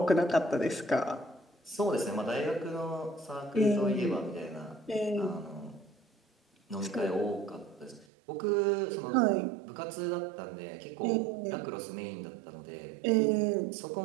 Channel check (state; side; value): drops out; left; at 8.1 s